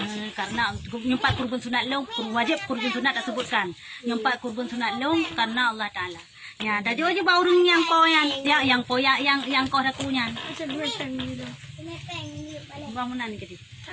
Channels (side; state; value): both; identical; correlation 1.00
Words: karena yang 4 kurban sunat long wajib kurban sunat tak sebutkan. Yang 4 kurban sunat long karena Allah Taala. Ya, tadi aja bau urung yang kau yang kau dah punya. Bangunan ke dia.